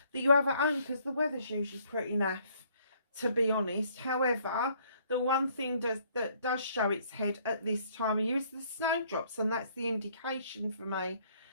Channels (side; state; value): both; inverted; correlation -0.63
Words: that you have at home, because the weather's usually pretty naff, to be honest. However, the one thing that does show its head at this time of year is the snowdrops, and that's the indication for me